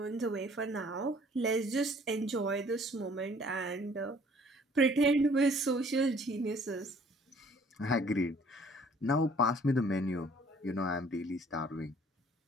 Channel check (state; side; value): normal; both; correlation 0.57